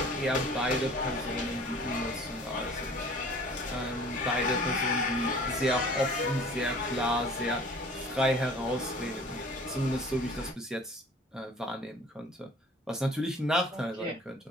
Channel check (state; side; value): normal; both; correlation 0.48